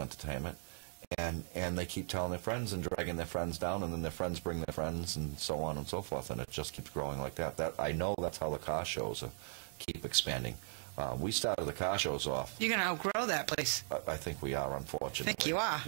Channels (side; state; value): left; silent; digital silence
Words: and they keep telling their friends and dragging their friends down, and then their friends bring their friends, and so on and so forth, and it just keeps growing like that. I know that's how the car shows keep expanding. We started the car shows off. You're going to outgrow that place. I think we are, unfortunately. I think you are.